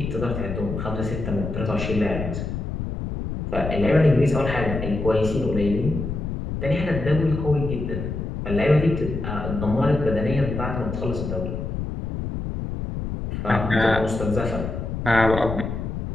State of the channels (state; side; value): noise; left; rumble, 4 dB below the sound